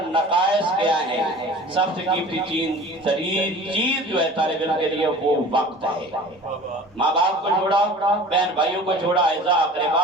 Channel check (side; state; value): both; normal; correlation 0.42